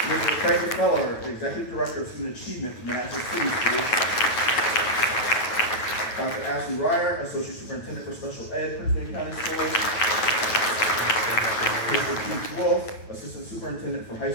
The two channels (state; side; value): late; right; 9.2 ms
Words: Mr. Craig Feller, Executive Director of Student Achievement for Manassas City Schools. Dr. Ashley Ryer, Associate Superintendent for Special Ed, Prince William County Schools. Mr. Keith Wolf, Assistant Superintendent for High